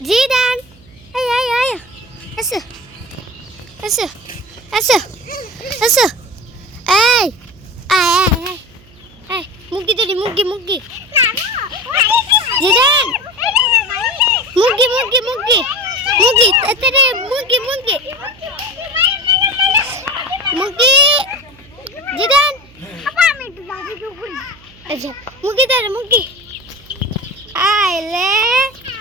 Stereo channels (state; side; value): noise; right; hum, 25 dB below the sound